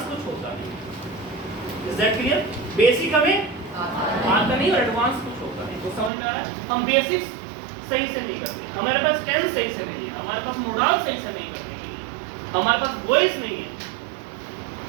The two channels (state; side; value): drops out; left; at 6.1 s